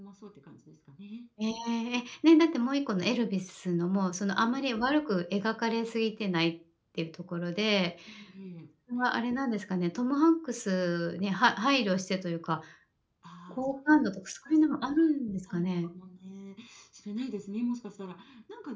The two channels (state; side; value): identical; both; correlation 1.00